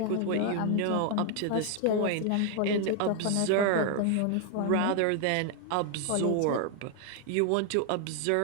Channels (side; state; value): both; different; correlation 0.00